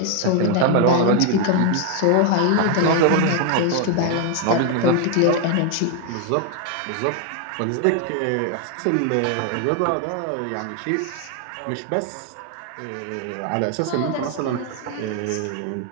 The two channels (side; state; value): both; different; correlation 0.01